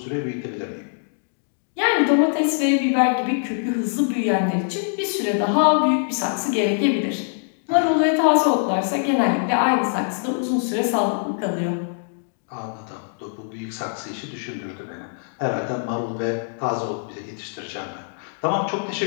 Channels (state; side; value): silent; right; digital silence